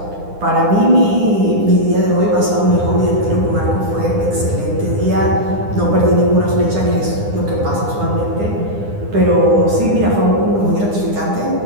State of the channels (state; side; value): late; left; 9.9 ms